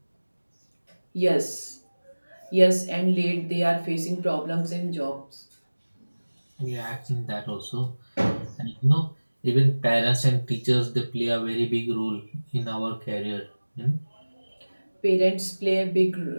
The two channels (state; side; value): inverted; both; correlation -1.00